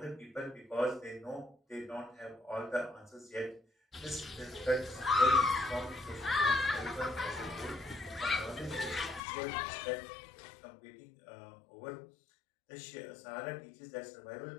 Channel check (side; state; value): right; drops out; at 9.2 s